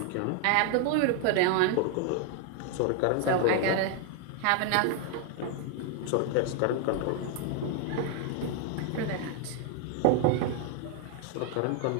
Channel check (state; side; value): different; both; correlation 0.00